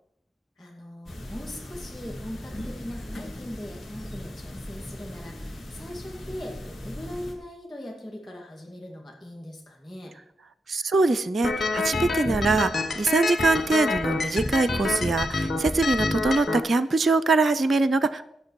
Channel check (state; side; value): normal; both; correlation 0.83